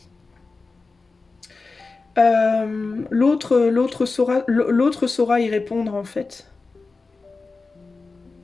L'autre saura y répondre, en fait.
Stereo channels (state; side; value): quieter; right; 3.9 dB